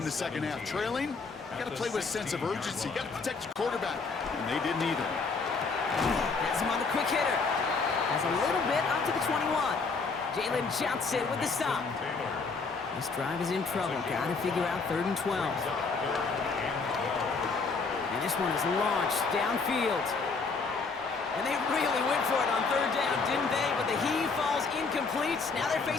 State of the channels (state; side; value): quieter; right; 4.5 dB